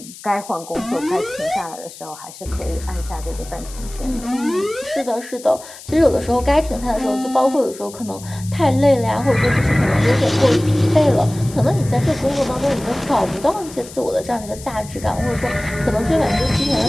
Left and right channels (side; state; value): left; noise; hiss, 17 dB below the sound